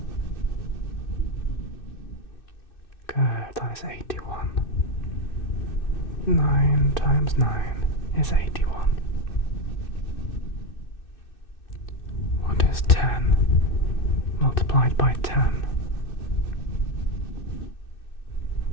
Good, that is 81. 9 times 9 is 81. What is 10 multiplied by 10?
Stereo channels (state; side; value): late; right; 2.6 ms